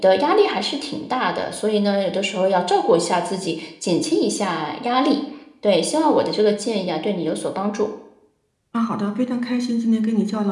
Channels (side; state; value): both; identical; correlation 1.00